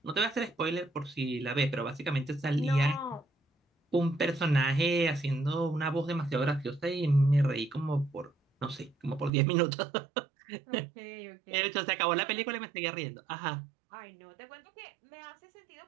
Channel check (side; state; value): left; drops out; at 9.3 s